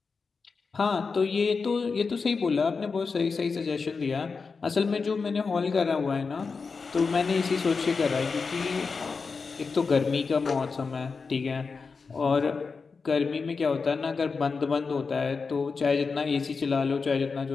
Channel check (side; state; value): right; quieter; 4.8 dB